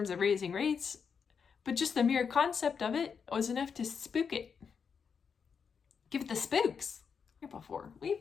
of raising rates, but just the mere concept of it was enough to spook it. Give it the spooks. Here before. We've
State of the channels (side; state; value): right; quieter; 6.3 dB